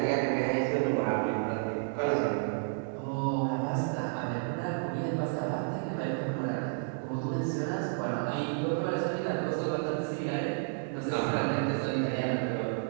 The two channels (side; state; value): left; silent; digital silence